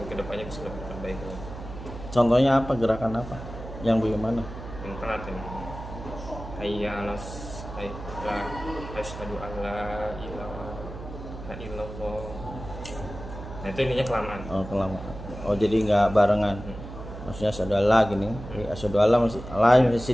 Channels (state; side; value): noise; right; hum, 11 dB below the sound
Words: kedepannya bisa lebih baik. Contohnya apa, gerakan apa? Yang bagaimana? Yang telat ya. Hayya 'alas asyhadu an la ilaha illallah. Nah itu ininya kelamaan. Oh, kelamaan. Oh, jadi nggak barengan. Maksudnya asyhadu alla gini. Asyhadu alla